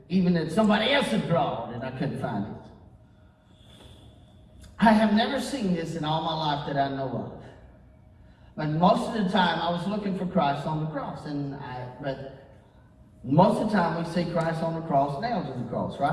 even that somebody else had drawn, and I couldn't find it. I have never seen this in all my life that I know of. But most of the time, I was looking for Christ on the cross. But most of the time, we see Christ on the cross, nailed to the cross,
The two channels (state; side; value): identical; both; correlation 1.00